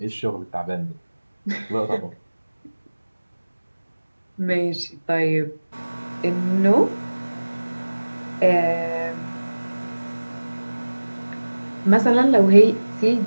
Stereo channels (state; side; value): inverted; both; correlation -1.00